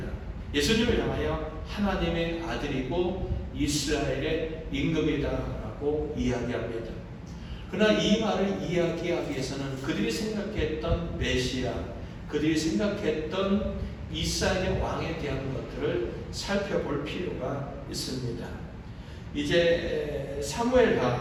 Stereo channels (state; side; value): identical; both; correlation 1.00